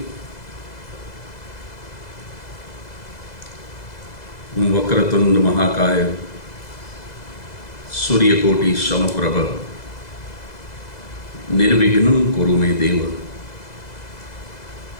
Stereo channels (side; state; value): right; late; 2.0 ms